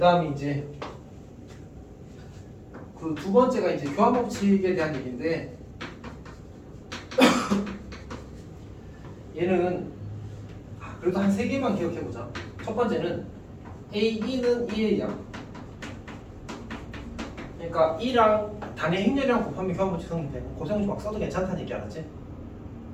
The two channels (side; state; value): both; identical; correlation 1.00